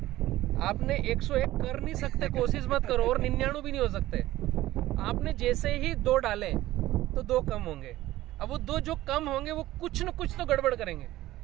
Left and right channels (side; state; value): left; quieter; 15.8 dB